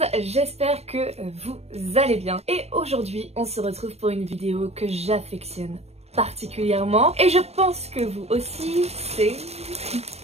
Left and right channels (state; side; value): late; left; 0.30 ms